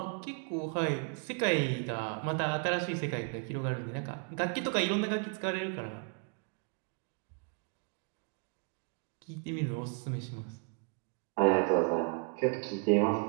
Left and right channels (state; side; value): quieter; left; 37.4 dB